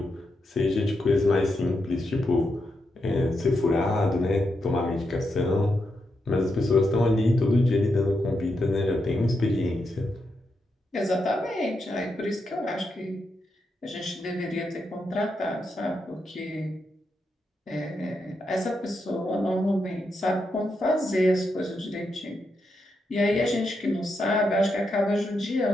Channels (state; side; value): normal; both; correlation 0.84